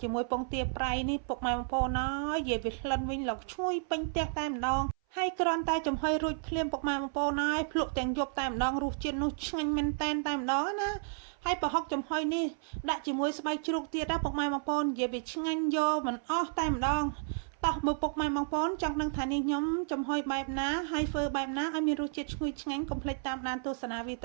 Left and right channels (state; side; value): silent; left; 56 dB below the other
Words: ជាមួយពងទាប្រៃនេះពុកម៉ែបងប្អូនអើយនិយាយវាក្លិនវិញឡុកឈ្ងុយពេញផ្ទះតែម្ដងហើយគ្រាន់តែចំហុយរួចភ្លាមពុកម៉ែបងប្អូនហើយភ្លក់ទាំងយប់តែម្ដងរសជាតិនោះឆ្ងាញ់មែនតែនតែម្ដងណាហើយប្រហុកចំហុយនេះដាក់ជាមួយស្បែកជ្រូកទៀតណាពុកម៉ែបងប្អូននិយាយវាឆ្ងាញ់យកមិនអស់តែម្ដងតោះមើលពុកម៉ែបងប្អូនចង់ដឹងថានេះខ្ញុំចំហុយបែបណាហើយធ្វើបែបណាឲ្យមានរសជាតិឈ្ងុយឆ្ងាញ់កុំភ្លេចតាមដានទស្សនាវីដ